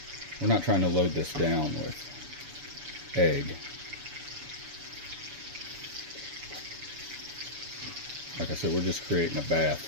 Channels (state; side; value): late; left; 7.0 ms